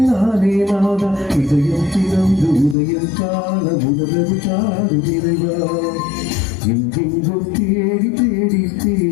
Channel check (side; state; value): right; drops out; at 2.8 s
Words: நானே நாதா இதயம் திறந்து உதயம் கால முதலது காடு நிறைவா எங்கெங்கும் தேடி தேடி